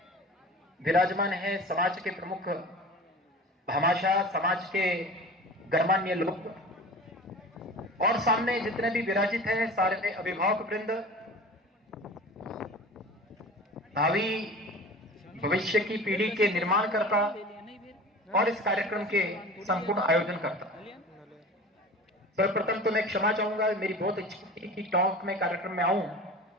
विराजमान हैं समाज के प्रमुख भामाशाह, समाज के गणमान्य लोग, और सामने जितने भी विराजित हैं सारे अभिभावक वृंद, भावी भविष्य की पीढ़ी के निर्माणकर्ता और इस कार्यक्रम के संपूर्ण आयोजन करता। सर्वप्रथम तो मैं क्षमा चाहूंगा, मेरी बहुत इच्छा थी कि टॉक में कार्यक्रम में आऊं,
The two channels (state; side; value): normal; both; correlation 0.37